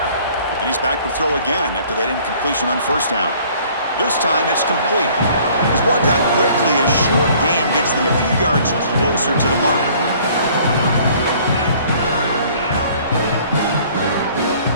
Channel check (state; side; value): inverted; both; correlation -0.55